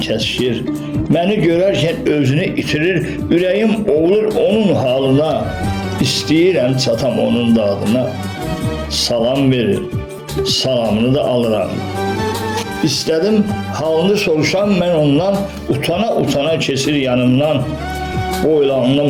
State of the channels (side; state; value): both; identical; correlation 1.00